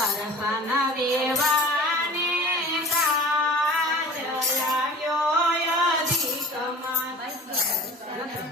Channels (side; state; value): both; normal; correlation 0.41